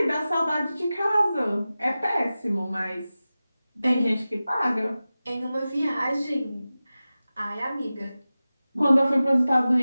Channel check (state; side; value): inverted; both; correlation -0.95